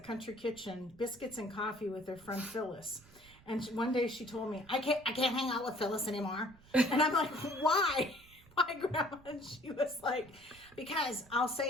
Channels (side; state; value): right; noise; rumble, 24 dB below the sound